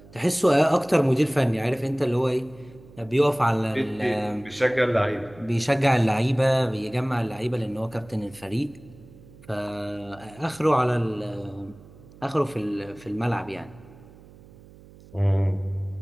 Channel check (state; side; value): noise; right; hum, 22 dB below the sound